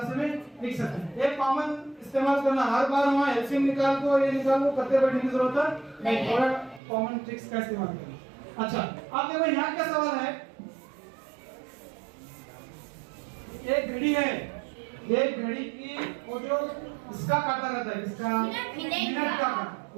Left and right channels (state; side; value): drops out; left; at 6.8 s